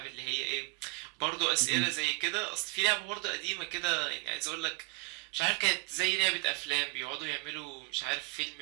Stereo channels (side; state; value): left; quieter; 24.8 dB